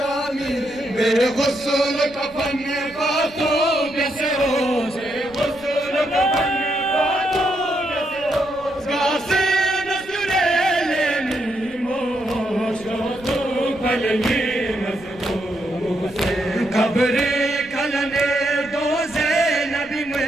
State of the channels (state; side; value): noise; right; rumble, 23 dB below the sound